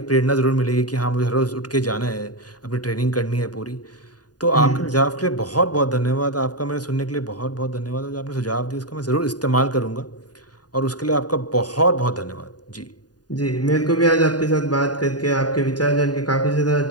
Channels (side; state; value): right; late; 0.69 ms